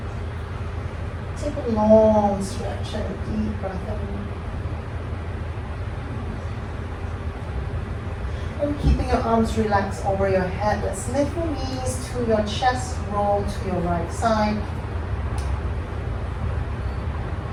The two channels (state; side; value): identical; both; correlation 1.00